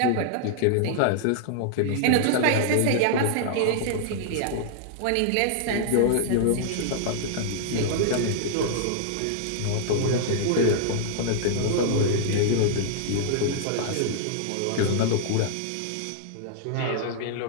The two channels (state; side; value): different; both; correlation -0.01